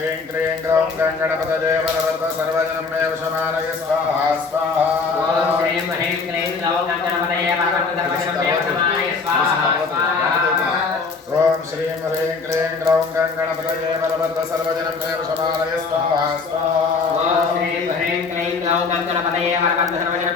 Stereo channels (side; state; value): right; quieter; 4.6 dB